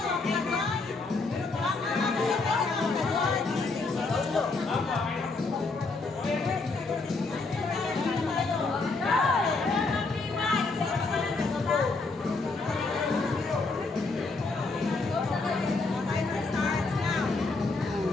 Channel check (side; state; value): right; quieter; 3.7 dB